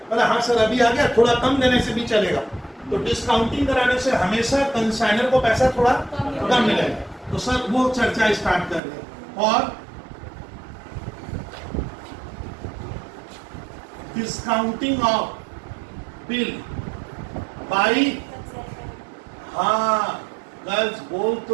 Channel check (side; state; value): left; drops out; at 8.8 s